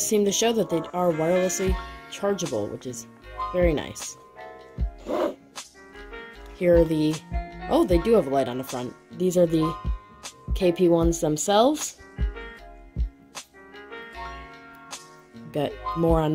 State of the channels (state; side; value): identical; both; correlation 1.00